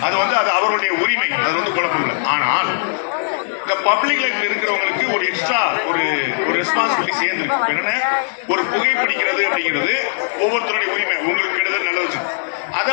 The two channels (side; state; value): right; silent; digital silence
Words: அது வந்து அது அவருடைய உரிமை. அது வந்து குழப்பம் இல்லை. ஆனால் இந்த பப்ளிக் லைஃப்ல இருக்கிறவங்களுக்கு ஒரு எக்ஸ்ட்ரா ஒரு ரெஸ்பான்சிபிலிட்டி சேர்ந்துருக்கு. என்னன்னா ஒரு புகைப்பிடிக்கிறது அப்படிங்கிறது ஒவ்வொருத்தருடைய உரிமை. உங்களுக்கு கெடுதல் நல்லது.